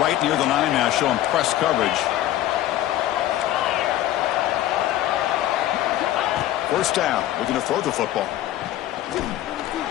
near the line now, showing press coverage. First down, looking to throw the football.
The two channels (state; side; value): quieter; right; 13.6 dB